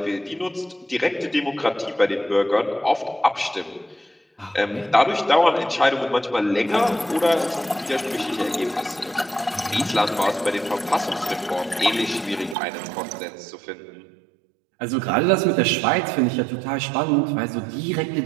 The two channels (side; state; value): left; drops out; at 12.6 s